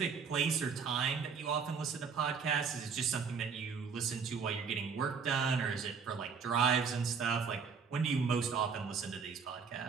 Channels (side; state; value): left; quieter; 5.9 dB